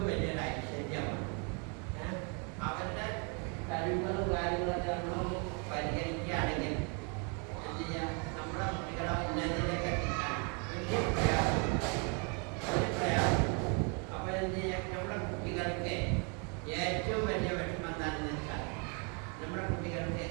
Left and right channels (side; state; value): left; quieter; 35.7 dB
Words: വലിയൊരു ഐശ്വര്യമാണ്. അവരുടെ കഴിവുകളും കാര്യങ്ങളൊക്കെ നമ്മൾ പരിഗണിക്കുകയാണെങ്കിൽ എന്ത് ചെയ്യാം, നമ്മുടെ കുട്ടികളെ ഉന്നതിയിലേക്ക് എത്തിക്കാൻ വലിയ പ്രയാസം. അപ്പൊ എന്ത് ചെയ്യാം, നമ്മുടെ കുട്ടികൾക്ക് ഏറ്റവും വലിയ വിഷമം എന്താണെന്ന് വെച്ചാൽ നമ്മുടെ കുട്ടികൾക്ക്